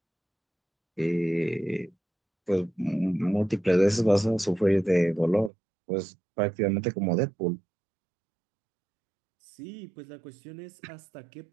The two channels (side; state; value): left; drops out; at 5.5 s